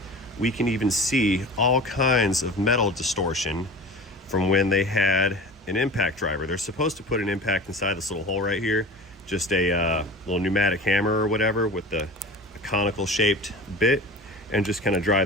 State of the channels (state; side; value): normal; both; correlation 0.36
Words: we can even see all kinds of metal distortion from when they had an impact driver. They're supposed to put an impact inside this little hole right here, just a little pneumatic hammer or whatever with a conical shaped bit, and just kind of